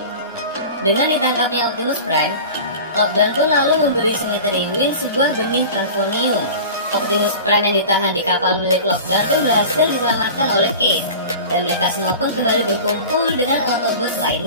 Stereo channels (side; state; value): both; inverted; correlation -0.36